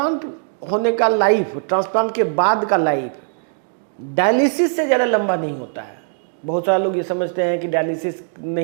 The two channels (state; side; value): silent; left; digital silence